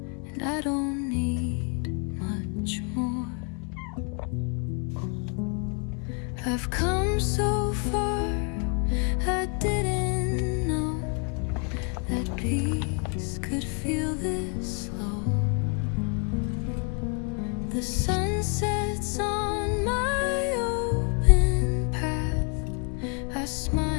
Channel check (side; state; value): right; quieter; 38.1 dB